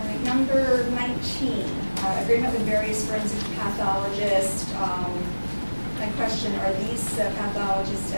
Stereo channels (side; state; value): both; inverted; correlation -1.00